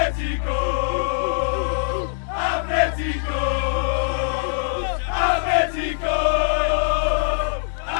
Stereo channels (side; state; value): right; silent; 64 dB below the other